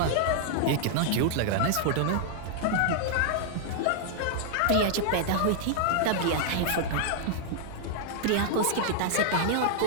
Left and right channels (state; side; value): different; both; correlation -0.01